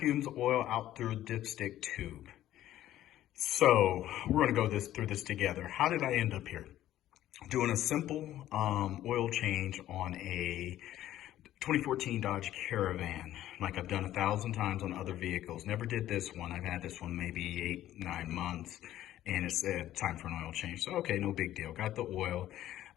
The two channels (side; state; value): right; quieter; 13.2 dB